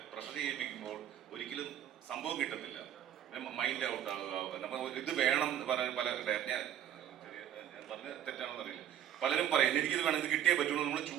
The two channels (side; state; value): left; quieter; 10.6 dB